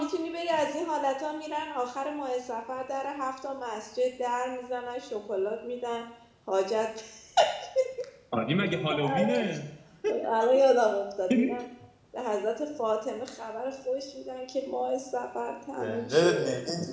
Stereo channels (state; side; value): identical; both; correlation 1.00